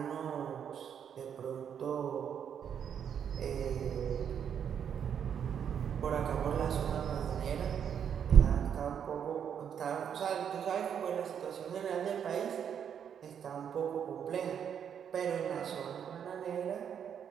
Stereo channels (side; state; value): left; quieter; 8.2 dB